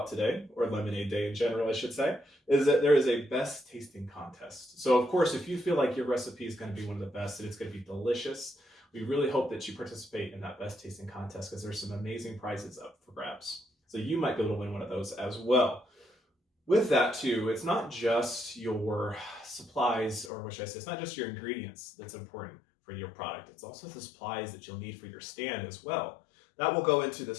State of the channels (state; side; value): drops out; right; at 20.3 s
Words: today, or Lemonade Day in general, I should say, is that there is a best tasting contest. So of course, if you feel like your recipe is going to be one of the best and it's going to be delicious, we really hope that you participate in that best tasting contest because there's some amazing prizes up for grabs. So you might be able to win one of those as well. With that too, it's not just your supplies, or what should I say, it's not just your ingredients that's important for your product. It's also the supplies that you'll need for your stand as well. That will go into